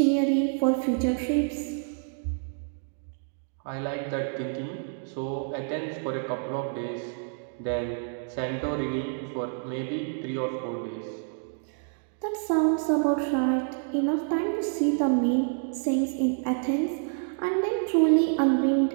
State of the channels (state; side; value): silent; left; 59 dB below the other